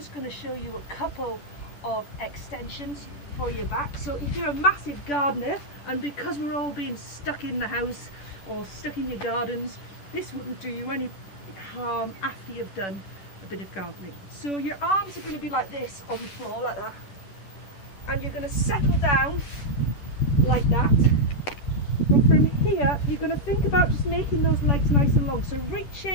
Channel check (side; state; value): right; late; 10 ms